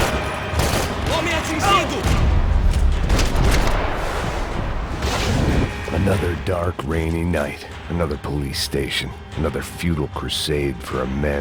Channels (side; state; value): both; identical; correlation 1.00